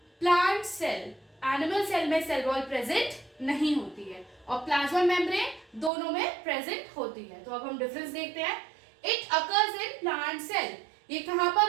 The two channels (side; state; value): left; drops out; at 5.9 s